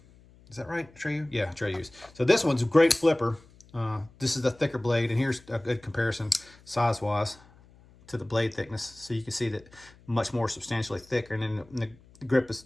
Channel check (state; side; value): noise; left; hum, 26 dB below the sound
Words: Is that right, Atreyu? Yeah, Atreyus. So this one's a great flipper. This is the thicker blade, and here's a good comparison size-wise to the blade thickness. So you can see that much more substantially thicker, and then the grip is